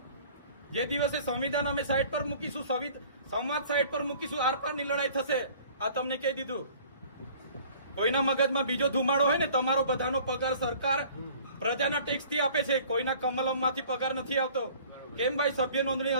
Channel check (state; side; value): inverted; both; correlation -0.50